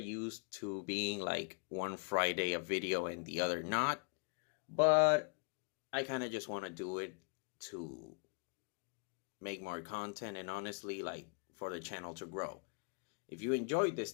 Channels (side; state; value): right; quieter; 39.3 dB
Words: to being like one Friday a video and the other not, but I kind of just want to do it to make more content and honestly like for the channel to grow. If you enjoyed this